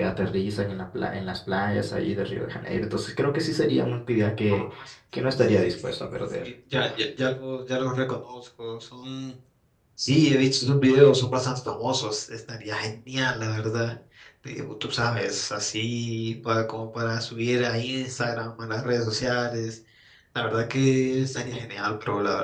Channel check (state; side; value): identical; both; correlation 1.00